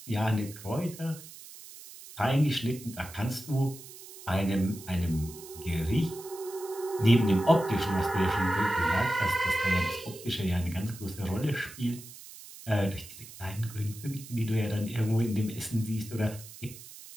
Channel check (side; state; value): right; noise; hiss, 16 dB below the sound